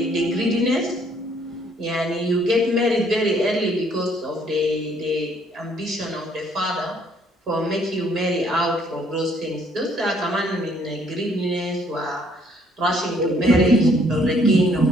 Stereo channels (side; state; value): both; normal; correlation 0.64